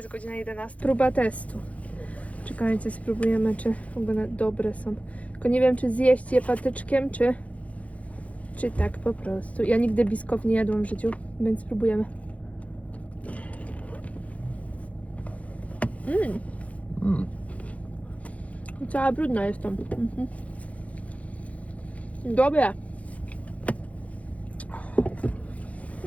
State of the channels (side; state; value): right; late; 0.067 ms